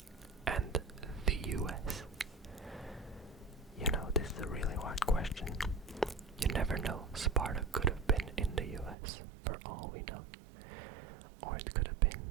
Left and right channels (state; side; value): drops out; left; at 9.0 s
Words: and the US. You know, this is a really hard question. You never know. Sparta could have been in the US, for all we know. Or it could have been